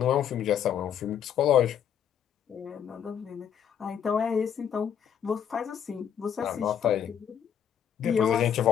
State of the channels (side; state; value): right; quieter; 8.8 dB